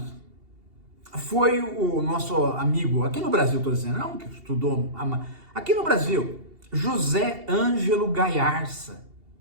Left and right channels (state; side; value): late; left; 2.8 ms